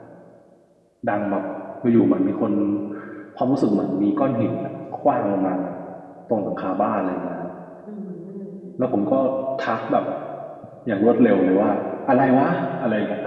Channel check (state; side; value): identical; both; correlation 1.00